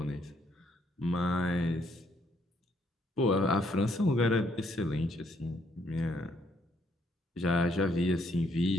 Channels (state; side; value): normal; both; correlation 0.71